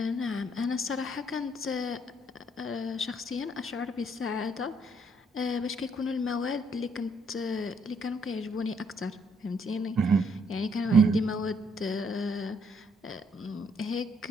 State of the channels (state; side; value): normal; both; correlation 0.69